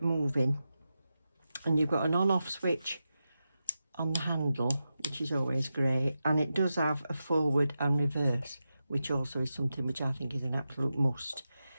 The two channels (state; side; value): inverted; both; correlation -0.90